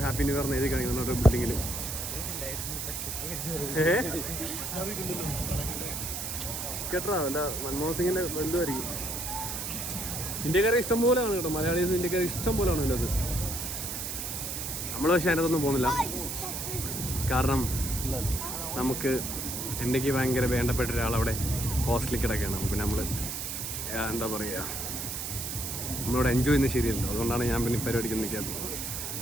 ഹാപ്പി ന്യൂ ഇയർ എഴുതി കാണിക്കുന്നുണ്ട് ഒരു ബിൽഡിങ്ങിൽ. കേട്ടോ അല്ല, മൻമോഹൻ സിംഗിൻ്റെ ബന്ധുവായിരിക്കും. ഇന്ത്യക്കാരെ ഇഷ്ടം പോലെയാണ് കേട്ടോ, മലയാളീസ് ഇന്ത്യക്കാരെ ഇഷ്ടം പോലെയാണ് ഇതിനകത്ത്. നമ്മൾ പക്ഷേ അതിനകത്തൊന്നും പോകുന്നില്ല, കാരണം നമുക്ക് എനിക്ക് ഭയങ്കര വേണ്ടപ്പെട്ട ഒരാളവിടെ ഹോസ്റ്റലിൽ കിടക്കുകയാണ്. പിന്നെ നമ്മൾ എന്താ പറയുക, നമ്മളിവിടെ എൻജോയ് ചെയ്യുന്നത് ശരിയല്ലോ. അതുകൊണ്ടാണ് ഞാൻ പിന്നെ പരിപാടിക്ക് നിൽക്കാത്തത്.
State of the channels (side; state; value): right; noise; hiss, 4 dB below the sound